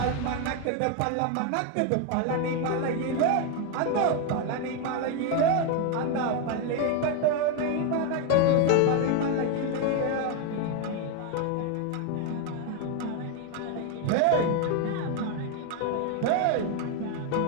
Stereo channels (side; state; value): both; different; correlation 0.01